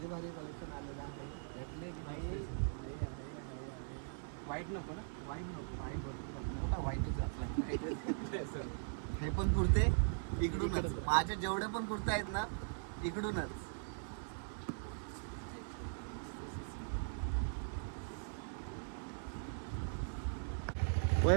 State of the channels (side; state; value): left; silent; digital silence